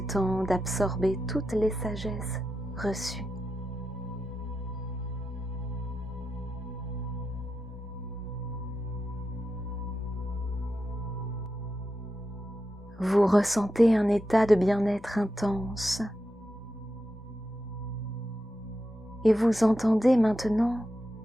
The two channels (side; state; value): both; normal; correlation 0.88